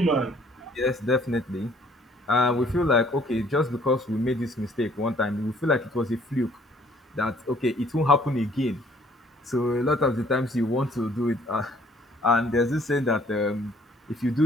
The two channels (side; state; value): both; normal; correlation 0.60